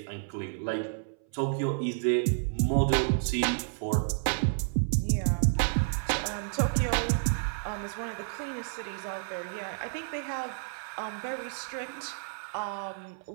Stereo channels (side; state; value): left; silent; 57 dB below the other